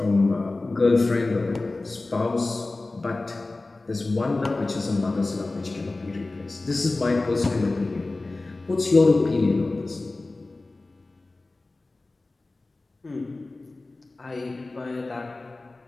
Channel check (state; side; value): quieter; right; 3.2 dB